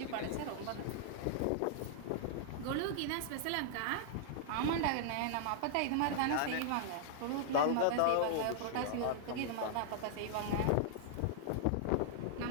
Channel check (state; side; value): different; both; correlation -0.01